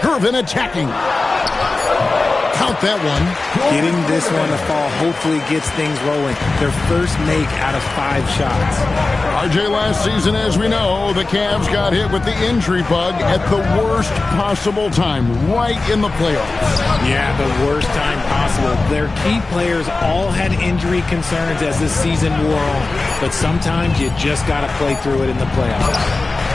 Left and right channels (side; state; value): right; quieter; 3.5 dB